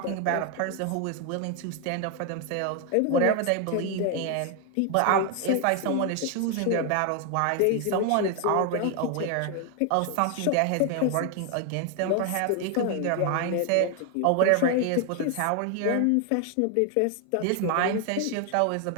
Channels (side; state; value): both; different; correlation 0.01